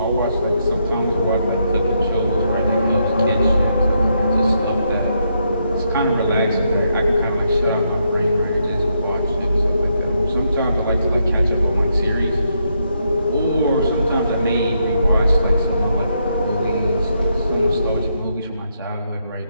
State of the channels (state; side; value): inverted; both; correlation -0.78